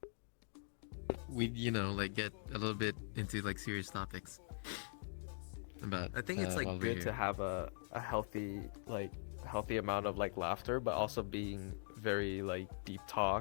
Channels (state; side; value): silent; right; digital silence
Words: We, like, get a little bit into, like, serious topics. about. I think it's like while we're good here. to have a healthy amount of like laughter, but also being very like deep